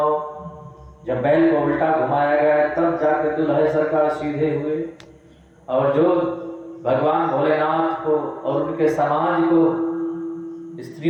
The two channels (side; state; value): both; identical; correlation 1.00